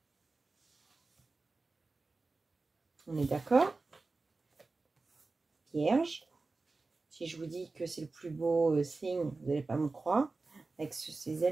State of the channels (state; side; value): quieter; left; 3.7 dB